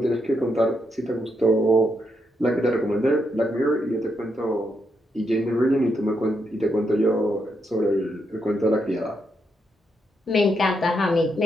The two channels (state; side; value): normal; both; correlation 0.80